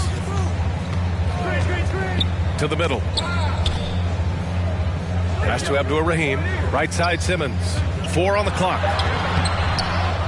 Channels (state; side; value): identical; both; correlation 1.00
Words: To the middle. Pass to Abdur-Rahim. Right side Simmons. 4 on the clock.